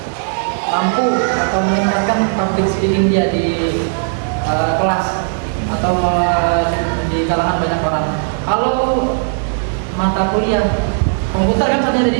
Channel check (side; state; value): left; silent; digital silence